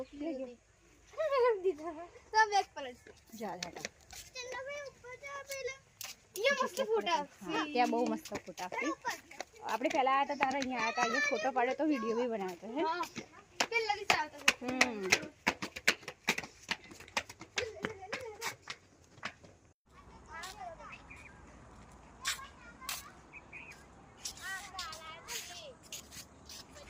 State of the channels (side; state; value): both; identical; correlation 1.00